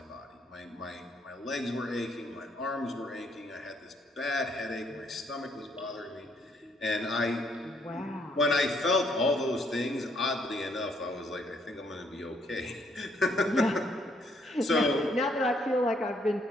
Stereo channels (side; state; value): both; normal; correlation 0.70